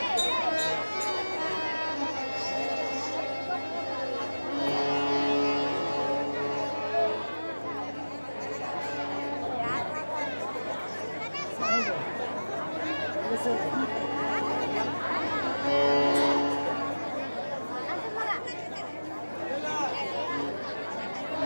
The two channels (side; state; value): both; inverted; correlation -1.00